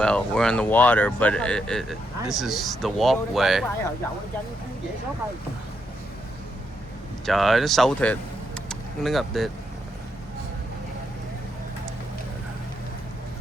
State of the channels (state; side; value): normal; both; correlation 0.80